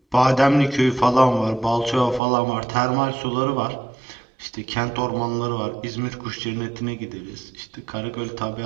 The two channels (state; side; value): drops out; left; at 2.2 s